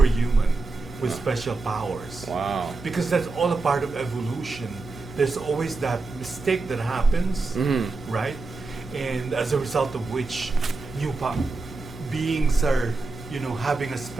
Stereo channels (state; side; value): quieter; left; 3.6 dB